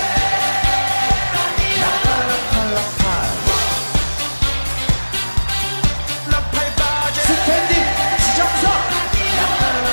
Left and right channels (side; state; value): both; inverted; correlation -1.00